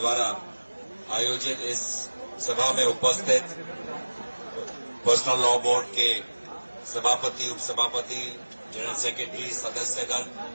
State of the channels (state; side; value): inverted; both; correlation -1.00